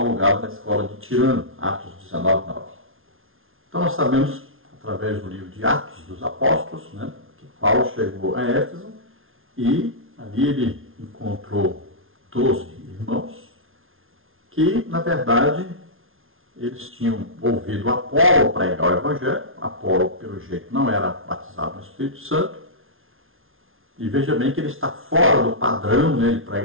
alugado na escola de Tirano, Atos 19, 9. Então nós sabemos, através do livro de Atos dos Apóstolos, né, que Paulo chegou a Éfeso e ali ele encontrou 12 irmãos que, na verdade, eles tinham ouvido Apolo pregar o evangelho. Apolo, pelo jeito, não era batizado no Espírito Santo. E veja bem que ele está fora do padrão, né, de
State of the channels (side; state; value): left; late; 0.60 ms